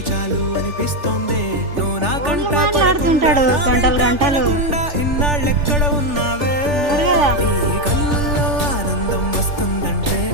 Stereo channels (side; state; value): left; late; 3.4 ms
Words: చాలు అనిపిస్తోంది. నువ్వు నా కంట మాట్లాడుతుంటాడు గంటలు గంటలు. ఇన్నాళ్ళెక్కడ ఉన్నావే? నీ కళ్ళల్లో ఆనందం వస్తుందంటే